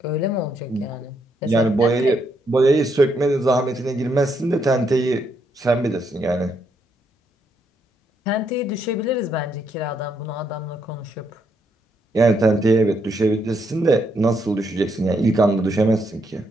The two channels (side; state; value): both; normal; correlation 0.76